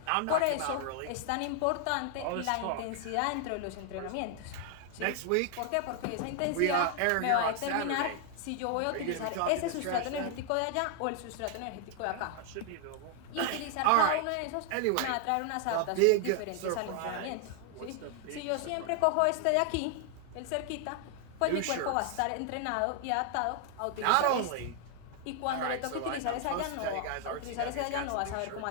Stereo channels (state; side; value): different; both; correlation 0.00